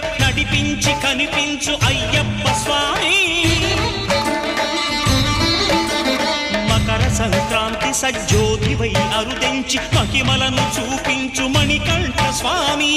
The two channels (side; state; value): both; identical; correlation 1.00